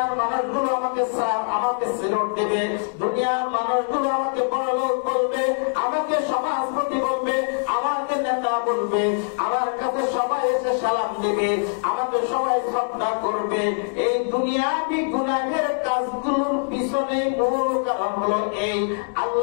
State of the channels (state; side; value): silent; right; digital silence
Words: মানুষগুলো আমাকে সিলট দেবে, দুনিয়ার মানুষগুলো আমাকে বড়লোক বলবে, আমাকে সমাজপতি বলবে, আমাকে নেতা বলবে, আমার কাছে সবাই এসে সালাম দেবে, আমাকে সবাই শ্রদ্ধা করবে। এই দুনিয়াবি গুনাহের কাজগুলোর পিছনে মূল কারণ হলো এই।